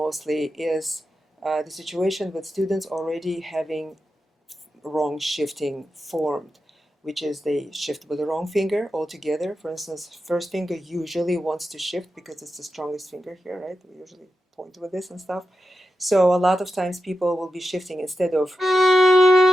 is the situation with students already having wrong shifting formed. which is they shift with the wrong finger altogether. For instance, first finger usually wants to shift because it's the strongest finger here, right? We usually point with this and stuff. So a lot of times people will be shifting instead of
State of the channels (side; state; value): both; normal; correlation 0.89